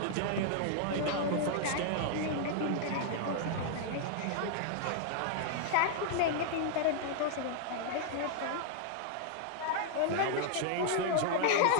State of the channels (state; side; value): different; both; correlation -0.01